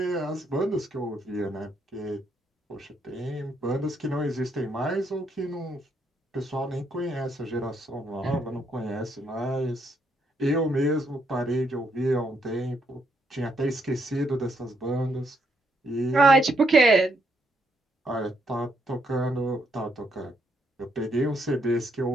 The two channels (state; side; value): normal; both; correlation 0.74